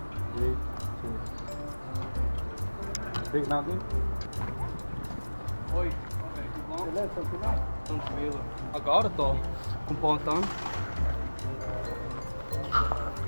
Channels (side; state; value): both; inverted; correlation -1.00